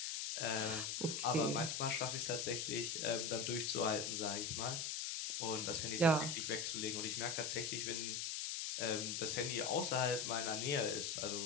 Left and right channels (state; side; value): noise; left; hiss, 2 dB below the sound